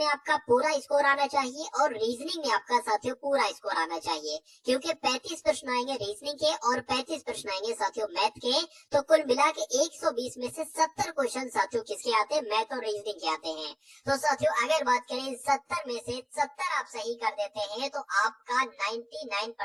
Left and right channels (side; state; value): both; identical; correlation 1.00